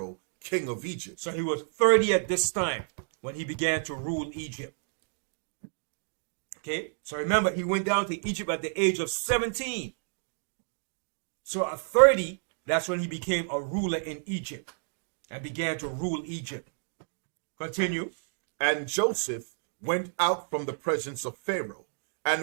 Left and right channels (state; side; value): silent; left; digital silence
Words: king of Egypt. So he was 30 at this time when he began to rule Egypt. Okay? So remember, he went down to Egypt at the age of 17. So at 30, that's when he became a ruler in Egypt and began to rule Egypt. Continue. And Joseph went out from the presence of Pharaoh